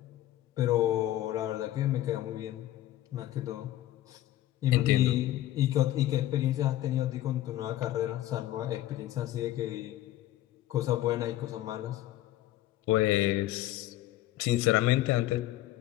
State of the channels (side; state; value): right; quieter; 14.2 dB